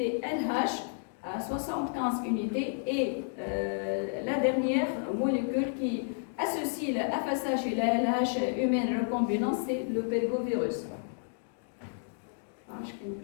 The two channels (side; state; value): right; silent; digital silence